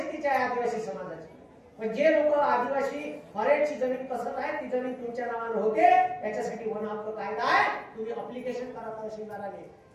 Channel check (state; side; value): identical; both; correlation 1.00